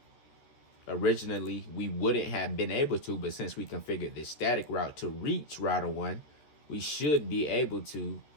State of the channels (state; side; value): late; right; 14 ms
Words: Originally, we wouldn't have been able to, but since we configured this static route to reach router 1, we should be able to